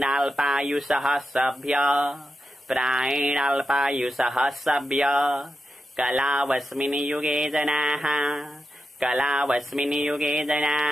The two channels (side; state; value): both; normal; correlation 0.89